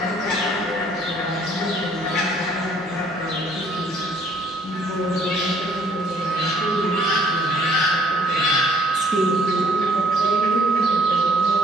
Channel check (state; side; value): normal; both; correlation 0.62